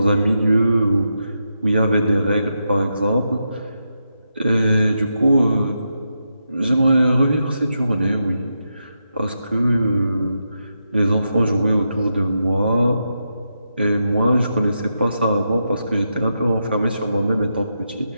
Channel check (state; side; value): inverted; both; correlation -0.85